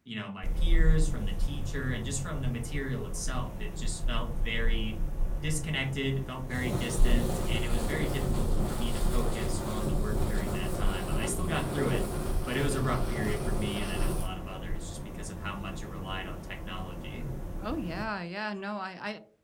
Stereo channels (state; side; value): identical; both; correlation 1.00